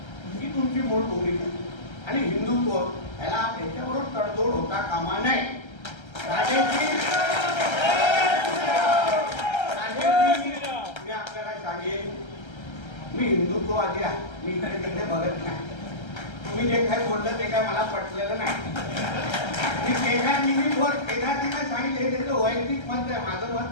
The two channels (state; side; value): late; right; 1.3 ms